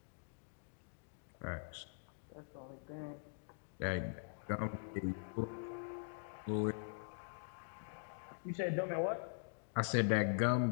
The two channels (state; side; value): silent; right; digital silence